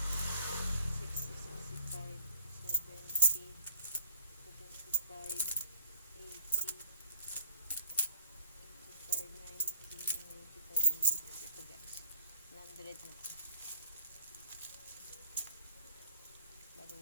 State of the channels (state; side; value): inverted; both; correlation -0.52